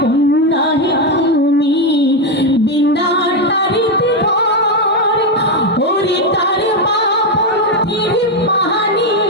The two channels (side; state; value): both; normal; correlation 0.07